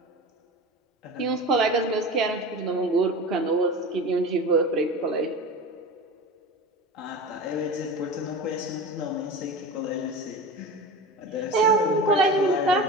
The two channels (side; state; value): both; normal; correlation 0.31